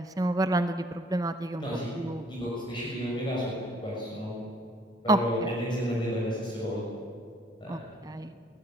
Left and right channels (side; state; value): both; normal; correlation 0.61